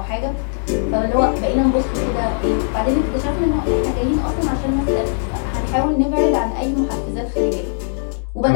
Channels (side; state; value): right; silent; digital silence